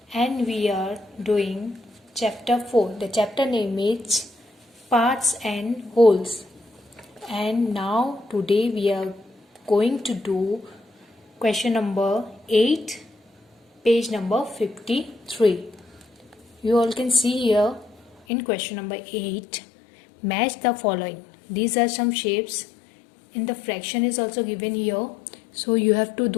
and we are doing chapter 4. The chapter name is parts and wholes. And now today we are going to do question number 8, page number 53. You all can see here in question number 8, match the following. These are some shapes. In the fraction is also given here, so you have to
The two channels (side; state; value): right; drops out; at 18.2 s